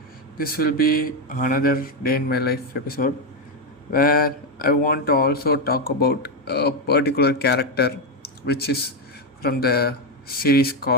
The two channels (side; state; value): both; normal; correlation 0.07